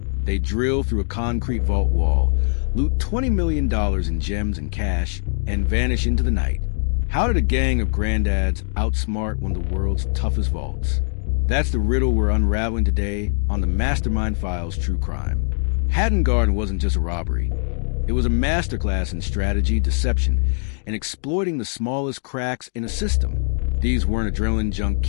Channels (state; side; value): silent; right; digital silence